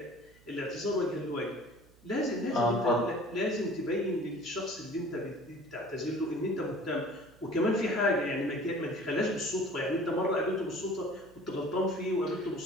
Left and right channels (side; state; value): right; noise; hum, 27 dB below the sound